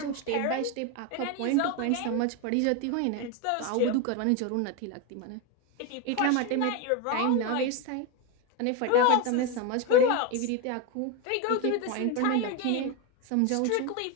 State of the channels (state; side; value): different; both; correlation 0.03